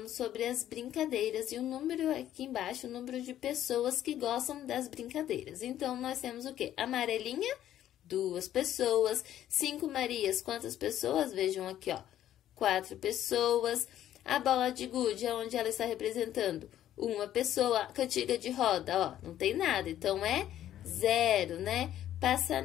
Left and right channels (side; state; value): right; quieter; 11.9 dB